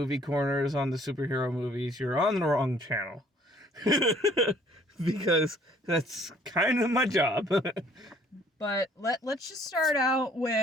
corners on the superhero movies, you're on the wrong channel. Because that's kind of my job. But let's just start out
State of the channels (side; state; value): both; normal; correlation 0.59